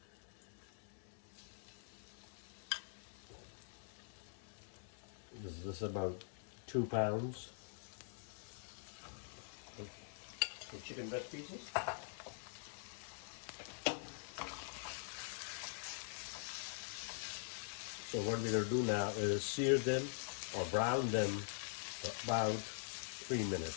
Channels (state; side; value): silent; right; digital silence